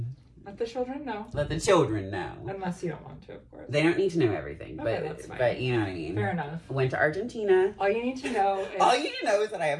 the children know. Let the children know. Unless you don't want to, of course. They don't need to know everything, Okay, that's fine. but you know what I mean. Fair enough. Went to Argentina. All you need to know is All you need to know is that I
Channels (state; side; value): identical; both; correlation 1.00